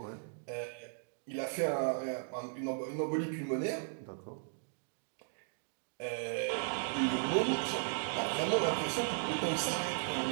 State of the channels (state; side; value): silent; left; digital silence